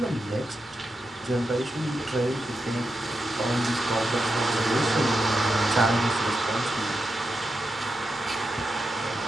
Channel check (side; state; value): both; normal; correlation 0.87